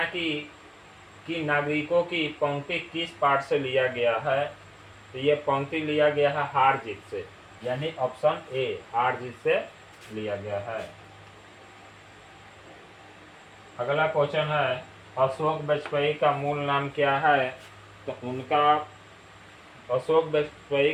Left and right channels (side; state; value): both; identical; correlation 1.00